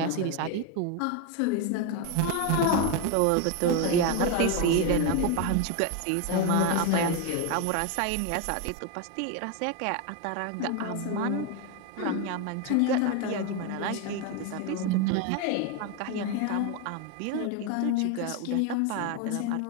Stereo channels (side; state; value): both; different; correlation 0.02